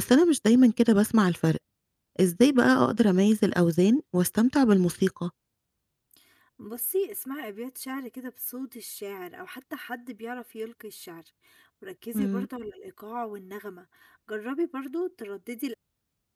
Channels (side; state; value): both; identical; correlation 1.00